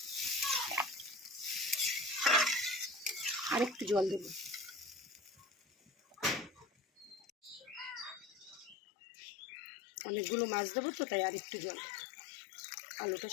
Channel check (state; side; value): drops out; right; at 8.8 s